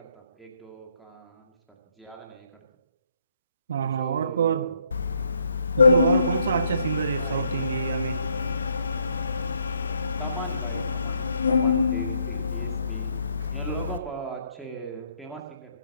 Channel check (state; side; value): inverted; both; correlation -0.72